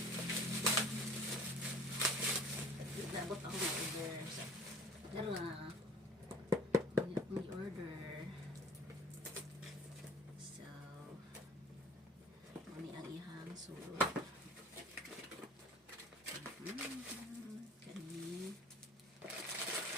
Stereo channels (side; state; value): both; normal; correlation 0.46